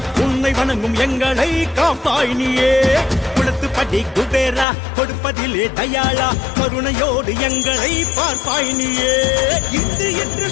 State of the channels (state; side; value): drops out; right; at 4.7 s